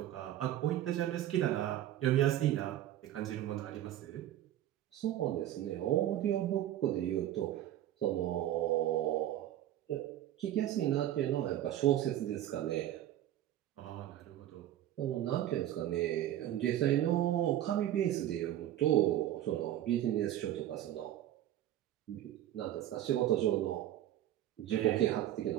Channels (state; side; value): quieter; left; 12.6 dB